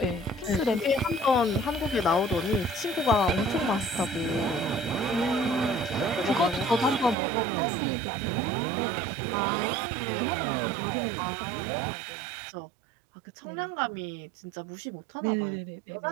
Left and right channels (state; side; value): drops out; left; at 7.2 s